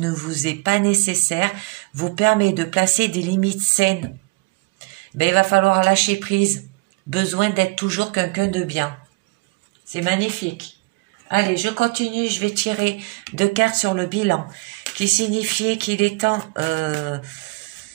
vous est pas nécessaire vous permet de placer des limites saines. Il va falloir lâcher prise. Besoin d'être toujours quelqu'un de bien. C'est magnifique. Allez, je continue. Je vais tirer 2 cartes sur le bilan. Qui signifiait qu'il est temps...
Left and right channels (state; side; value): quieter; left; 27.0 dB